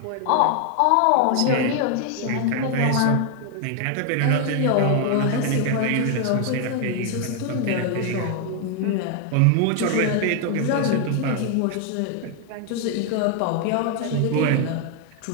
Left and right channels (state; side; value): different; both; correlation 0.00